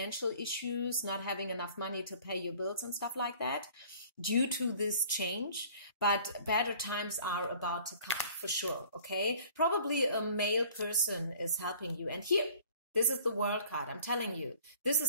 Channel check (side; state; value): both; inverted; correlation -0.51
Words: issues, not having enough money to pay your bills and stuff like that due to this change. But better times are about to come for sure, okay? Probably a male person is helping you. And here, this is the World card. I'm telling you, this